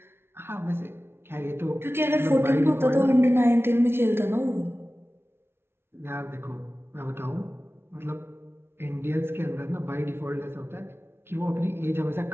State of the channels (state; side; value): late; left; 0.12 ms